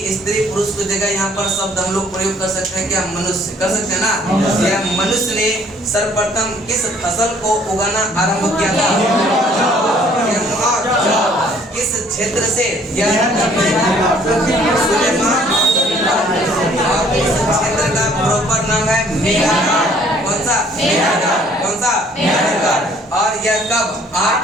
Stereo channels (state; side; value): normal; both; correlation 0.59